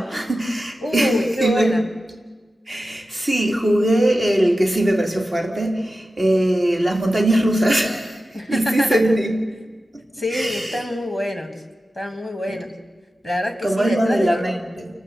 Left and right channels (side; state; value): both; normal; correlation 0.93